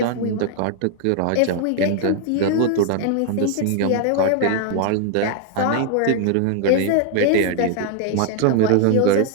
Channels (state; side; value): different; both; correlation 0.00